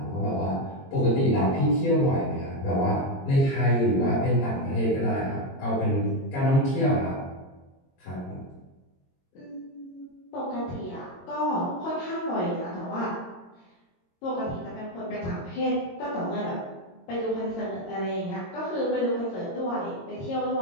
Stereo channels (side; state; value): right; late; 22 ms